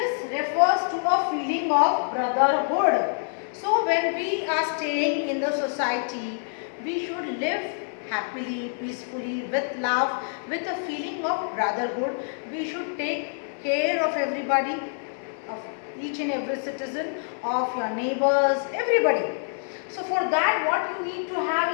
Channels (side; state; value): right; silent; 61 dB below the other